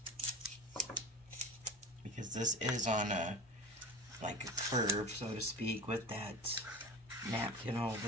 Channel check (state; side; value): normal; both; correlation 0.33